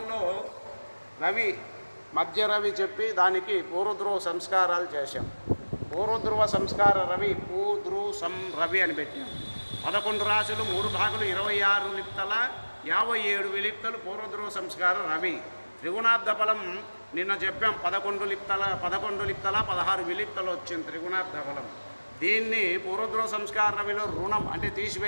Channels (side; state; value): both; inverted; correlation -1.00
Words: రవి, మధ్య రవి చెప్పి దానికి పూర్వధ్రువ సంస్కారాలు చేశాం. పూర్వధ్రువ సంస్కార రవి, పూధ్రువ రవి అని పెట్టాం. 11 రాశులు, 3 భాగులు, 26 లిప్తల, 57 విలిప్తలు పూర్వధ్రువ సంస్కార రవి. త్రిగుణాబ్ద ఫలం నిన్న చెప్పాం, 11 లిప్తల 16 విలిప్తలు వచ్చింది త్రిగుణాబ్ద ఫలం. దీన్ని పూర్వధ్రువ సంస్కార రవిలో రుణం అంటే